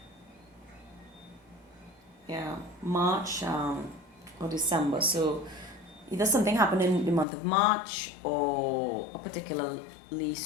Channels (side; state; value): right; drops out; at 7.2 s